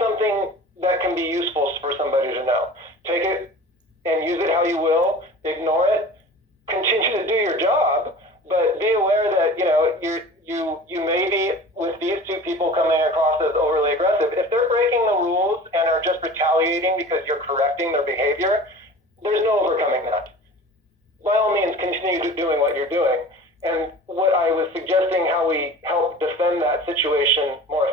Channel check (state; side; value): normal; both; correlation 0.40